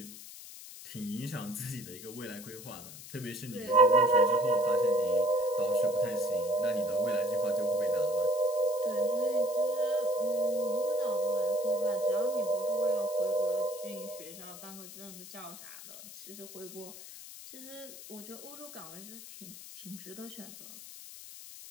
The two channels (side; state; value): left; noise; hiss, 14 dB below the sound